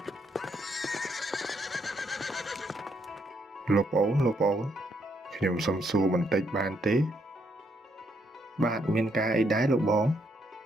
លោកប្អូនខ្ញុំសុំសួរបន្តិចបានទេបាទមានការអីដែរលោកបង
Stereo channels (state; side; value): normal; both; correlation 0.74